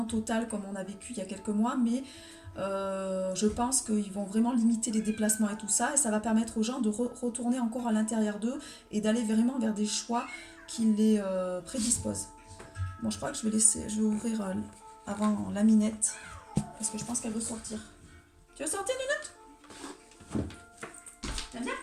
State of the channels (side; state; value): both; identical; correlation 1.00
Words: total comme on a vécu il y a quelques mois, mais je pense qu'ils vont vraiment limiter les déplacements et tout ça, et ça va permettre aux gens de retourner encore à l'intérieur d'eux et d'aller vraiment vers des choix qui les prédisposent. Bon, je crois que je vais ouvrir avant la minette parce que je pense qu'elle veut sortir. Tu veux sortir, Nunette? T'aimes bien?